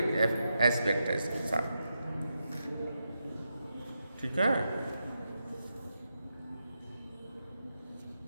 एस्पेक्ट है इसके साथ, ठीक है।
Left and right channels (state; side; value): inverted; both; correlation -0.86